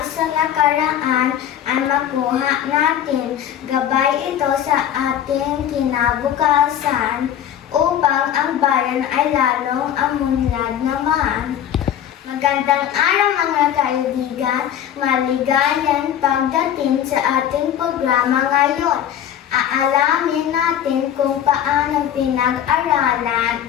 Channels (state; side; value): quieter; right; 10.3 dB